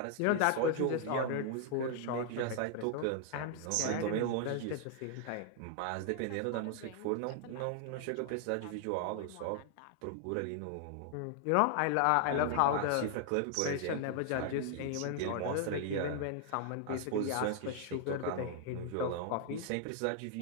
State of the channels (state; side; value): different; both; correlation 0.00